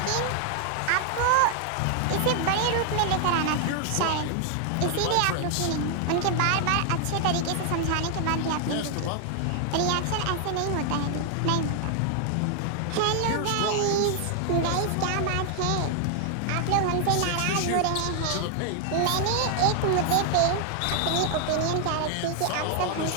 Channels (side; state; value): both; different; correlation 0.00